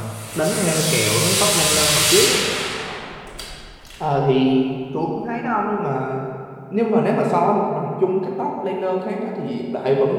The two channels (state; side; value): identical; both; correlation 1.00